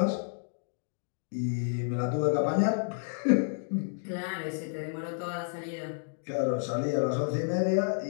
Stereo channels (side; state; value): right; silent; digital silence